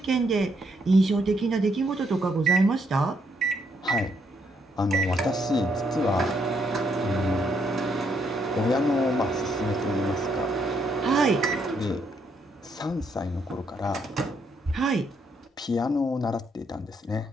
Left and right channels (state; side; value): normal; both; correlation 0.74